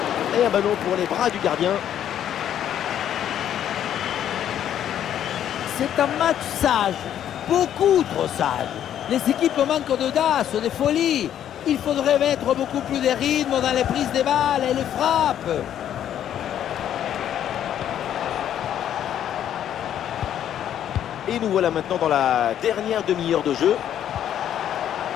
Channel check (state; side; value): quieter; right; 10.4 dB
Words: Et un ballon pour les bras du gardien. C'est un match sage, beaucoup trop sage. Les équipes manquent d'audace, de folie. Il faudrait mettre beaucoup plus de rythme dans les prises des balles et les frappes. Et nous voilà maintenant dans la dernière demi-heure de jeu.